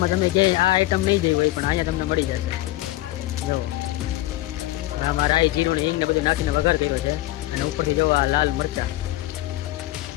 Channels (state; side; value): quieter; right; 16.9 dB